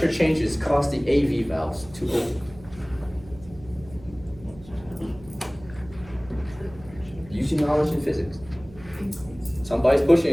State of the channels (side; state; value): right; noise; hum, 20 dB below the sound